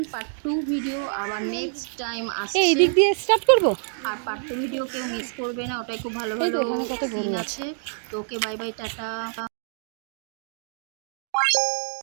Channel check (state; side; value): silent; left; digital silence